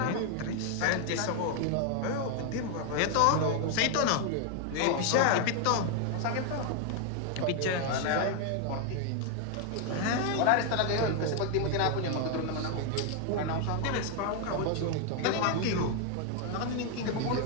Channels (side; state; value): both; different; correlation 0.00